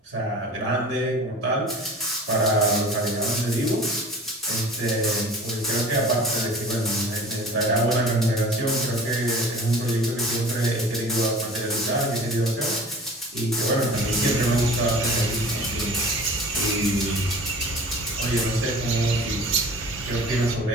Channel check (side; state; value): both; normal; correlation 0.42